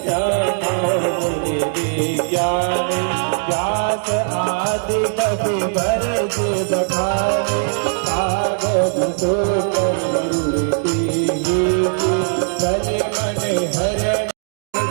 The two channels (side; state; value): left; silent; digital silence